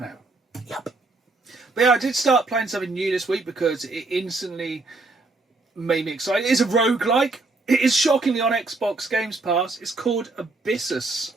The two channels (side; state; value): left; quieter; 3.4 dB